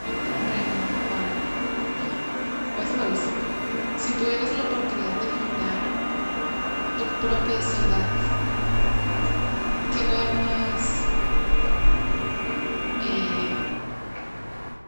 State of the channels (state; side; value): inverted; both; correlation -1.00